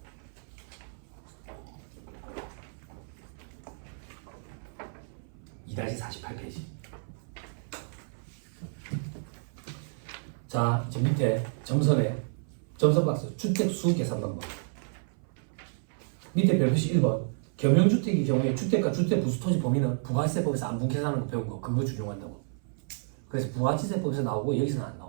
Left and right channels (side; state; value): left; silent; 57 dB below the other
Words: (2-) 48페이지. 자, 저 밑에 점선에 점선 박스 주택 수 계산 방법. 밑에 별표시 1번 겸용주택의 경우에 주택과 주택 부수 토지 범위는 부가세법에서 안분 계산하는 거 배운 거 그거 준용한다고. 그래서 부가치세법에서 나오고 여기서는 안